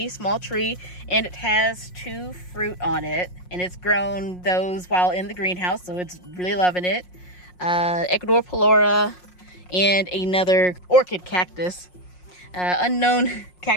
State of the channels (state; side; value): late; right; 5.5 ms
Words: small tree, and it has 2 fruit on it. And it's grown those while in the greenhouse, so it's really loving it. Ecuador Pelora and another orchid cactus. Unknown